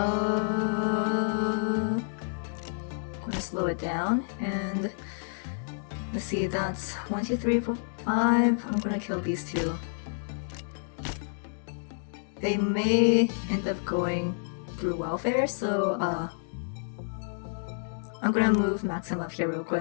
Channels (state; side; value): silent; right; digital silence